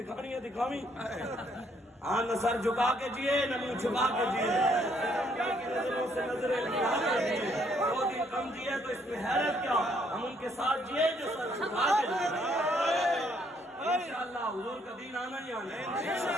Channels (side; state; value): both; normal; correlation 0.68